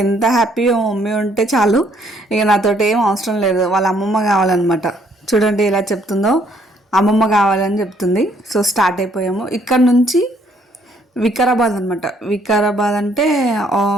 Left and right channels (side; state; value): both; normal; correlation 0.66